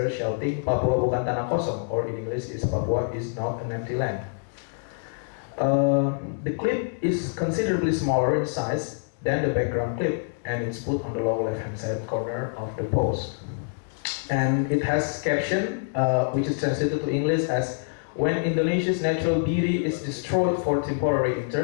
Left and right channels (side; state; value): right; silent; digital silence